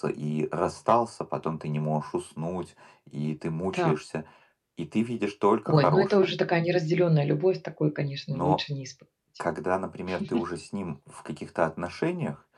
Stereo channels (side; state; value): both; identical; correlation 1.00